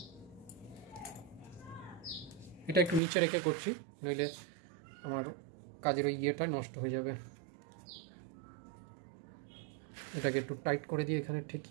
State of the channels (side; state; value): left; drops out; at 3.0 s